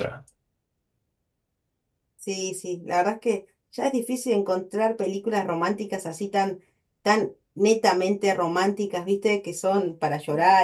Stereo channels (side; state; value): both; identical; correlation 1.00